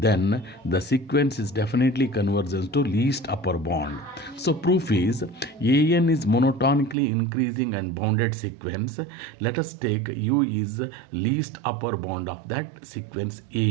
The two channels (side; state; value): left; drops out; at 7.0 s